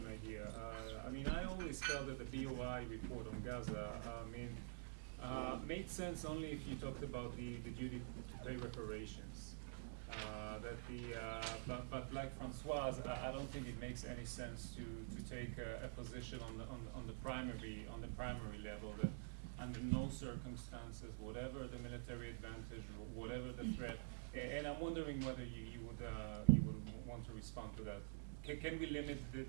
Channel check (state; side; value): silent; left; digital silence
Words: idea. I always felt that the BOI report on Gaza made sense only if you talked about the duty to pay reparations. But like François, I don't think it makes any sense to take a position on the primary level that under no circumstances, whatever the military advantage, whatever the threat, and I'm wondering whether you would want to respond to that. Can we limit